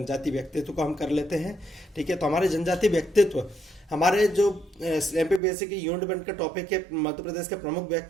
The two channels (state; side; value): drops out; left; at 5.4 s